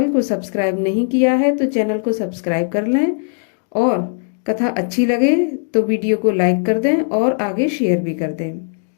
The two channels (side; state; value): right; silent; 67 dB below the other